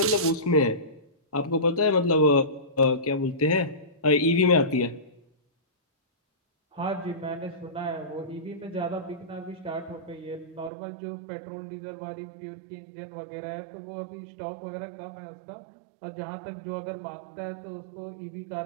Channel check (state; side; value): drops out; left; at 10.7 s